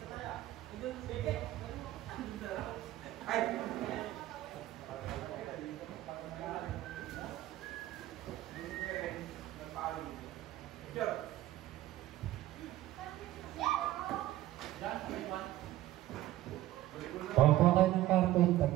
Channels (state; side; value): quieter; left; 15.0 dB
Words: Kuha kayo ng karton,